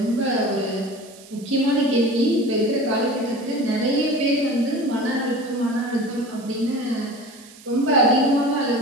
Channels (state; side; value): noise; right; hiss, 22 dB below the sound